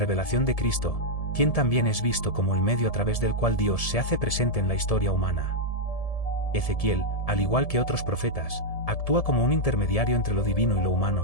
de Cristo, quien también es visto como el medio a través del cual Dios se hace presente en la historia humana. Ezequiel, al igual que otros profetas, actúa como un intermediario entre lo divino y lo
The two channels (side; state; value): right; late; 1.7 ms